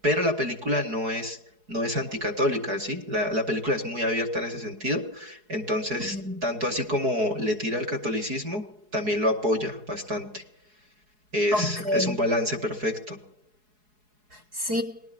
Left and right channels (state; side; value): late; left; 4.7 ms